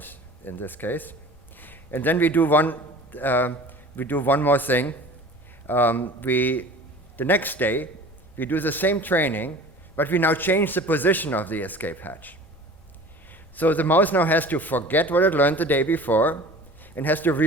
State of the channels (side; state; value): left; noise; rumble, 25 dB below the sound